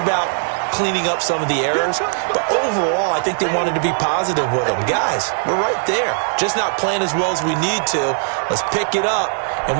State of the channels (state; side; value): silent; left; 61 dB below the other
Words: cleaning up some of the errors, but overall, I think they wanted to be positive with them. Guys, we're right there. Just not playing as well as we need to. Let's pick it up, and